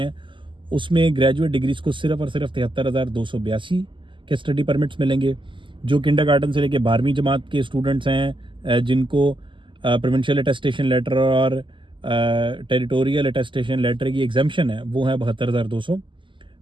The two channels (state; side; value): late; left; 0.24 ms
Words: उसमें ग्रेजुएट डिग्रीज को सिर्फ और सिर्फ 73,282 के स्टडी परमिट्स मिलेंगे। जो किंडरगार्टन से लेके 12वीं जमात के स्टूडेंट्स हैं जिनको प्रोविंशियल अटेस्टेशन लेटर और टेरिटोरियल अटेस्टेशन लेटर की एग्जाम्पशन है वो है 72,200,